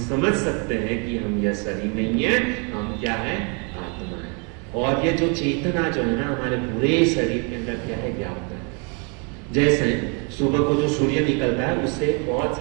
समझ सकते हैं कि हम यह शरीर नहीं है, हम क्या है? आत्मा है। और ये जो चेतना जो है ना हमारे पूरे शरीर के अंदर क्या है? व्याप्त है। जैसे सुबह को जो सूर्य निकलता है उससे बहुत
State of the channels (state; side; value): quieter; left; 35.2 dB